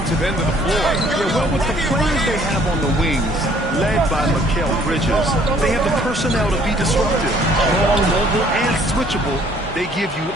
end of the floor. Yeah, well, with the players they have on the wings, led by Mikal Bridges, they have the personnel to be disruptive. Long, mobile, and switchable. They give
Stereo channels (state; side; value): normal; both; correlation 0.59